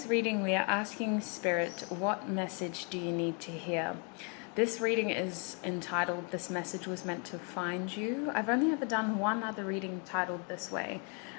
reading we are asking Spirit, what message do you need to hear? This reading is entitled, This Message Was Meant to Find You. I've only ever done one other reading titled this way,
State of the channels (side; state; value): right; quieter; 36.6 dB